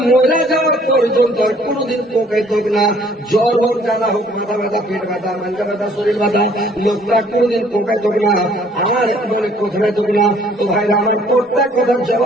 মরে যাওয়ার পর্যন্ত কোনদিন কোকাই থাক না, জ্বর হোক, জ্বালা হোক, মাথা ব্যথা, পেট ব্যথা, মাথা ব্যথা, শরীর ব্যথা, লোকটা কোনদিন কোকাই থাক না, আমার মনে কোথায় থাক না। তো ভাইরা আমার প্রত্যেক কথার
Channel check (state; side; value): normal; both; correlation 0.59